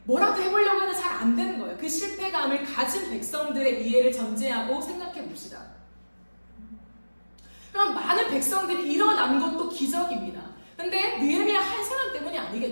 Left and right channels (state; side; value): inverted; both; correlation -1.00